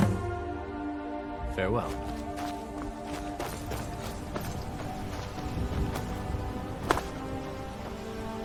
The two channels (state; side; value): identical; both; correlation 1.00